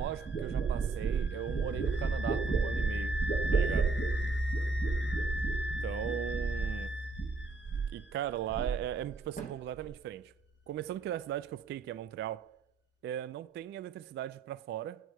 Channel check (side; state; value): left; quieter; 4.0 dB